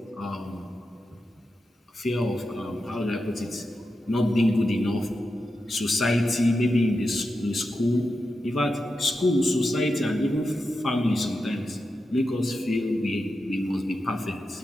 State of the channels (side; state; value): both; normal; correlation 0.89